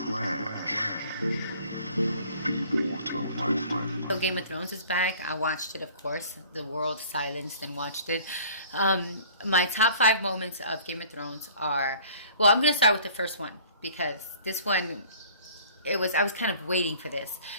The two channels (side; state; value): both; inverted; correlation -0.51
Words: Be water, my friend. So Game of Thrones is back. I watched it, of course. The world silenced and watched it. My top 5 moments of Game of Thrones are, well, I'm going to start with the first one because this one, I was kind of waiting for this.